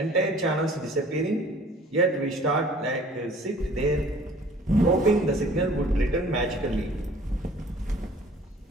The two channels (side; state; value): both; normal; correlation 0.51